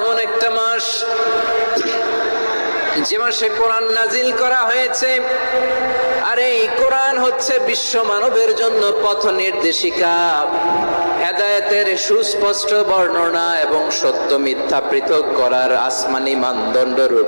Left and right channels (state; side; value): inverted; both; correlation -1.00